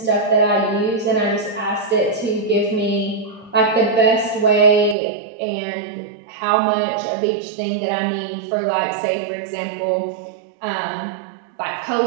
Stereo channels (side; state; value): left; drops out; at 5.0 s